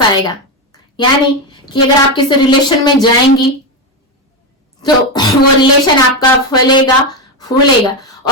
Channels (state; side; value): normal; both; correlation 0.11